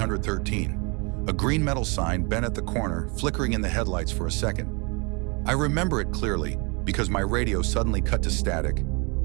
a green metal sign bent at the corner, flickering in the headlights for a second. I remember it clearly because my radio suddenly cut to static,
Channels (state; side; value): quieter; left; 30.9 dB